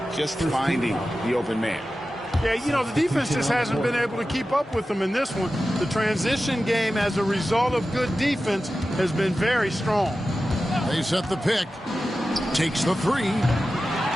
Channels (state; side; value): normal; both; correlation 0.94